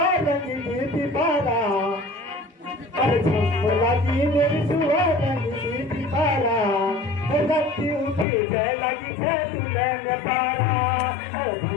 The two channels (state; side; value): drops out; right; at 8.2 s